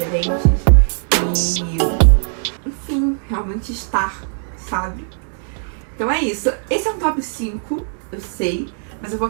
enfim, realmente estar, sabe? Então é isso. Esse é um top 5, eu sei, mas eu vou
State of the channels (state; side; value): silent; left; digital silence